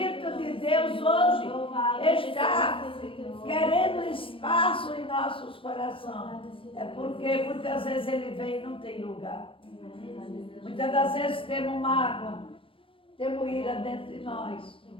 de Deus hoje está querendo espaço em nossos corações. É porque muitas vezes ele vem e não tem lugar. Muitas das vezes temos mágoa, temos ira dentro de nós.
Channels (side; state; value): right; late; 0.25 ms